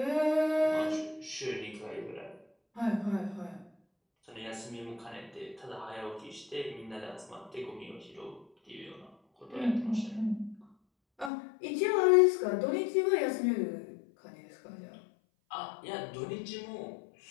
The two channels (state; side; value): drops out; right; at 11.3 s